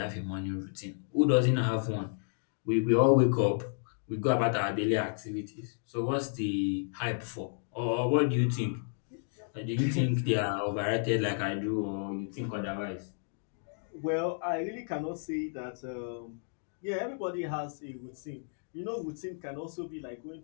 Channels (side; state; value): right; silent; digital silence